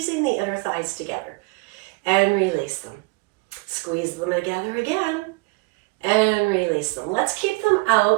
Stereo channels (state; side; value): quieter; left; 27.1 dB